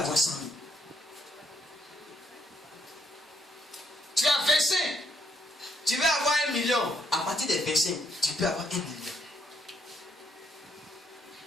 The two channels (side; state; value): both; normal; correlation 0.73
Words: 100 000. Tu as 25, tu vas avoir 1 million. À partir de 25, tu peux avoir 1 million.